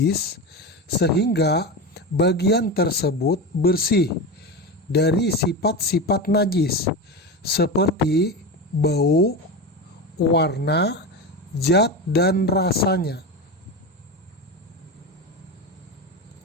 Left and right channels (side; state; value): both; normal; correlation 0.22